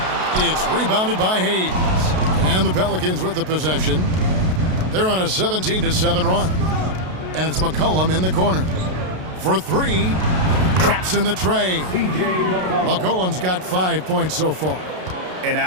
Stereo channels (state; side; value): late; left; 32 ms